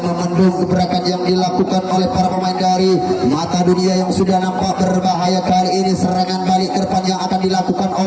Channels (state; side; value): identical; both; correlation 1.00